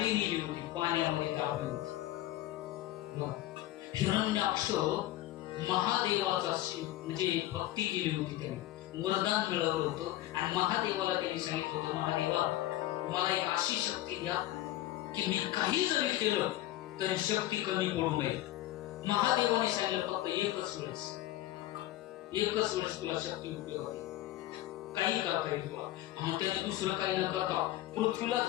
नेली होती, पाण्यामध्ये टाकली होती. हिरण्याक्ष महादेवाचा म्हणजे भक्ती केली होती, त्यांनी वरदान मिळवलं होतं. आणि महादेवाला त्यांनी सांगितलं होतं, महादेवा मला एक अशी शक्ती द्या की मी काही जरी केलं तरी शक्ती कमी पडू नये. महादेवाने सांगितलं फक्त एकच वेळेस तुला शक्ती उपयोग आहे, काही करता येईल तुला. मग त्याने दुसरं काही न करता पृथ्वीलाच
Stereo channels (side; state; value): right; quieter; 15.1 dB